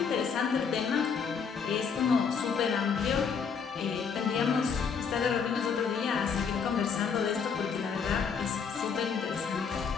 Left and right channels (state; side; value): quieter; right; 6.2 dB